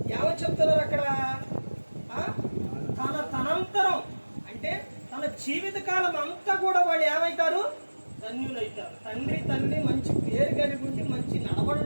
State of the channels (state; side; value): inverted; both; correlation -1.00